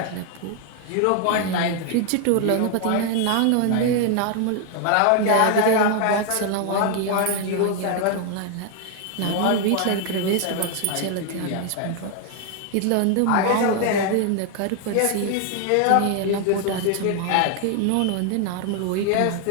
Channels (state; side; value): different; both; correlation 0.00